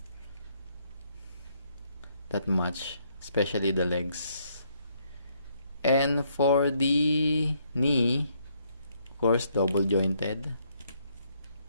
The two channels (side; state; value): both; inverted; correlation -0.71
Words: that much, especially the legs. And for the knee, of course, double jointed